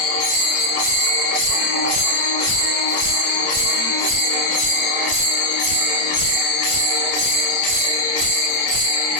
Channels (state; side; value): late; right; 30 ms